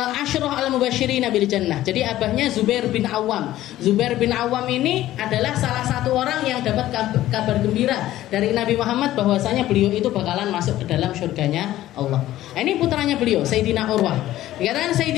Asyrah al-Mubasysyirin bil Jannah. Jadi abahnya Zubair bin Awam. Zubair bin Awam ini adalah salah satu orang yang dapat kabar gembira dari Nabi Muhammad bahwasanya beliau itu bakalan masuk ke dalam surganya Allah. Ini putranya beliau, Sayyidina Urwah. Dikatakan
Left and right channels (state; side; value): quieter; right; 14.4 dB